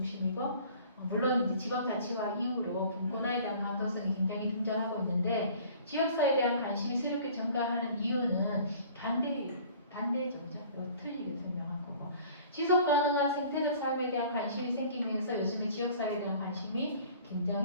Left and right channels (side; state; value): both; inverted; correlation -0.50